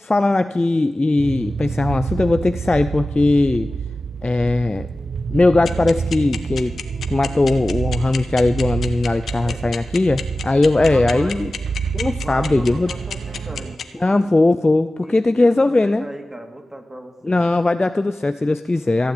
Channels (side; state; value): both; normal; correlation 0.96